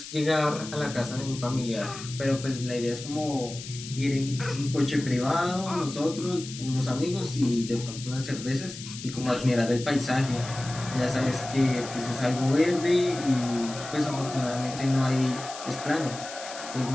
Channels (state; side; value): noise; left; hiss, 12 dB below the sound